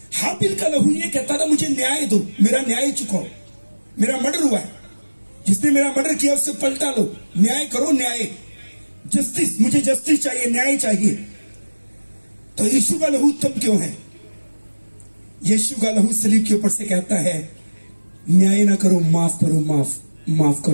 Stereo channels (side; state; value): both; inverted; correlation -1.00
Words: हाबिल का लहू ये कहता था, मुझे न्याय दो, मेरा न्याय चुकाओ, मेरा मर्डर हुआ है, जिसने मेरा मर्डर किया उससे पलटा लो, न्याय करो, न्याय, जस्टिस, मुझे जस्टिस चाहिए, न्याय चाहिए। तो यीशु का लहू उत्तम क्यों है? यीशु का लहू सलीब के ऊपर से कहता है, न्याय ना करो, माफ करो, माफ